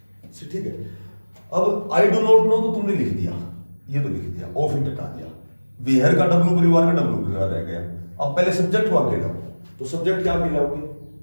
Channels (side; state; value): both; inverted; correlation -1.00